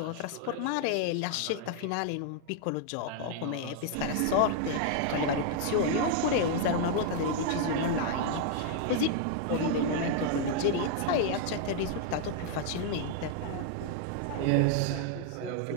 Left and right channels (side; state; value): both; different; correlation 0.00